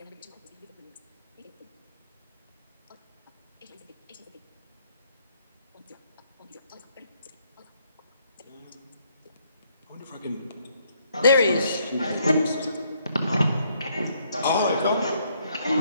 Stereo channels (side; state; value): both; inverted; correlation -0.70